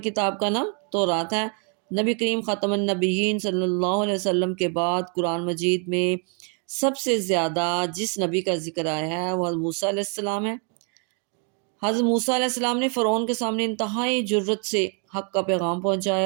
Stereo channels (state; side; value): quieter; left; 39.9 dB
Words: کتاب کا نام تورات ہے۔ نبی کریم خاتم النبیین صلی اللہ علیہ وسلم کے بعد قرآن مجید میں سب سے زیادہ جس نبی کا ذکر آیا ہے وہ حضرت موسیٰ علیہ السلام ہے۔ حضرت موسیٰ علیہ السلام نے فرعون کے سامنے انتہائی جرت سے حق کا پیغام